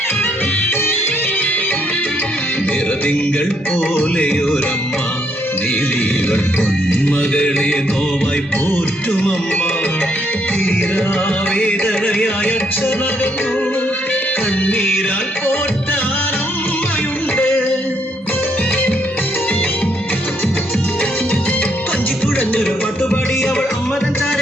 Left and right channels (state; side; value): normal; both; correlation 0.73